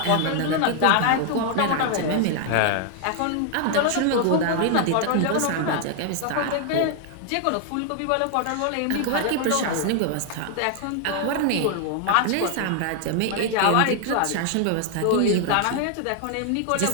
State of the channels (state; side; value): different; both; correlation 0.00